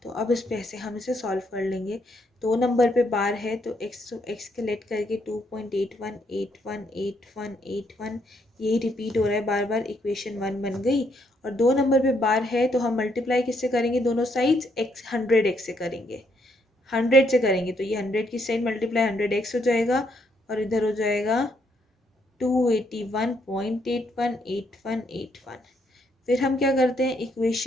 तो अब इस पे ऐसे हम इसे सॉल्व कर लेंगे। दो नंबर पे बार है तो एक्स के लेट करके 2.81 81 81 81 यही रिपीट हो रहा है बार बार। इक्वेशन 1 बन गई। और दो नंबर पे बार है तो हम मल्टीप्लाई किससे करेंगे, दोनों साइड्स एक्स 100x से करेंगे, 100 से करेंगे। तो ये 100 की साइड मल्टीप्लाई 100x हो जाएगा और इधर हो जाएगा 281.818181। फिर हम क्या करते हैं,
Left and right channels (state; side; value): normal; both; correlation 0.73